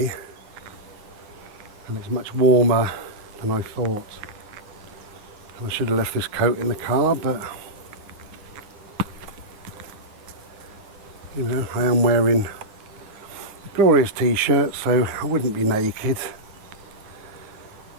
and it's much warmer than I thought. And I should have left this coat in the car, but you know, I am wearing a glorious t-shirt, so I wouldn't be naked.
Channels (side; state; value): left; late; 9.8 ms